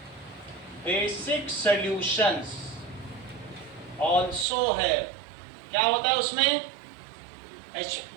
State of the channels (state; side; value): drops out; left; at 4.5 s